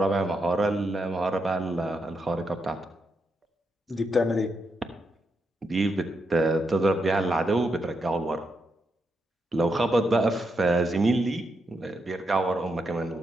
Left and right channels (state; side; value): normal; both; correlation 0.83